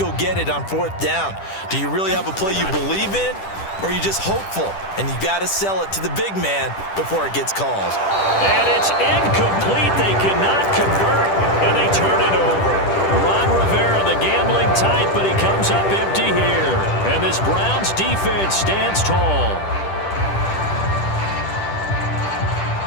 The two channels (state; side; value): late; right; 10 ms